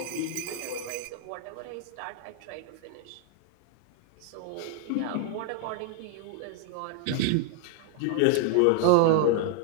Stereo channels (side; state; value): both; different; correlation 0.00